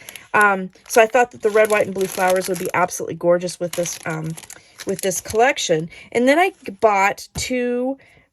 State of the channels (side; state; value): both; identical; correlation 1.00